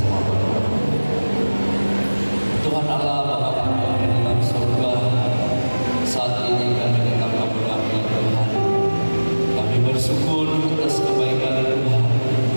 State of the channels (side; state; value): both; inverted; correlation -1.00